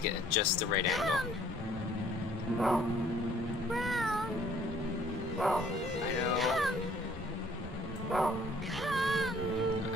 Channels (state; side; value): normal; both; correlation 0.58